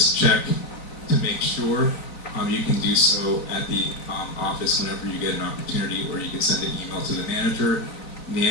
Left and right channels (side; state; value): right; late; 4.0 ms